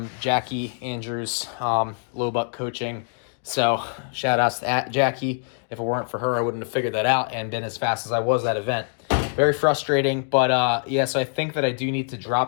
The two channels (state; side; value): silent; right; 62 dB below the other